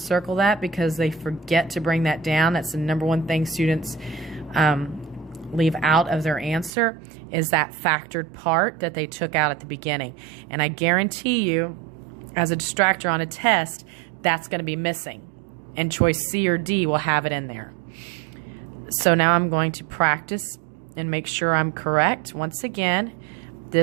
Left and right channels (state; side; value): drops out; left; at 6.7 s